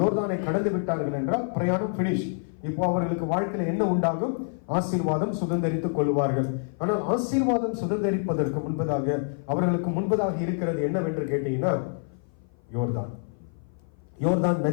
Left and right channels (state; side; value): silent; right; 55 dB below the other